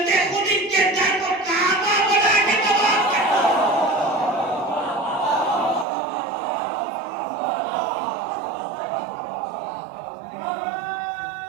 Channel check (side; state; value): left; drops out; at 5.9 s